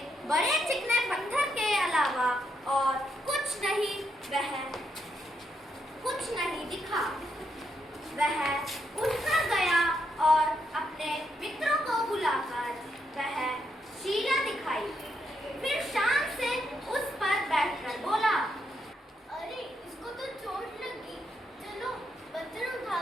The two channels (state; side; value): normal; both; correlation 0.79